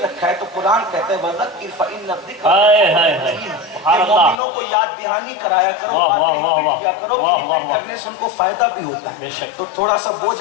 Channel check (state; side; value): drops out; right; at 4.4 s